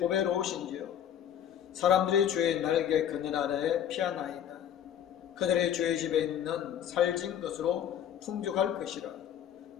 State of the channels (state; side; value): quieter; right; 9.7 dB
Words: 사람들이 주의 날개 그늘 아래 피하나이다. 그들의 주의 집에 있는 살진 것으로 풍족할 것이라.